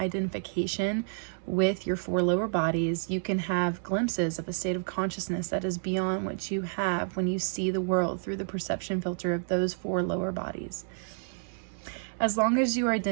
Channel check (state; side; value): silent; left; 58 dB below the other